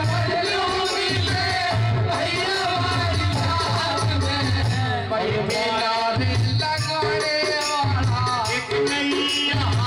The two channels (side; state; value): both; identical; correlation 1.00